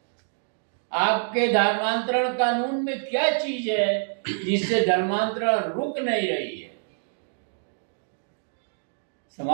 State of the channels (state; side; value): silent; left; digital silence